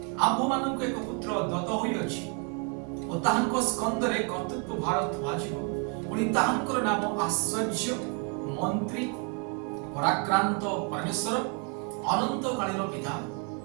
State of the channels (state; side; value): quieter; left; 34.7 dB